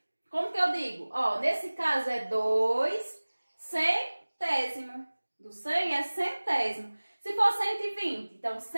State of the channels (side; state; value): both; inverted; correlation -1.00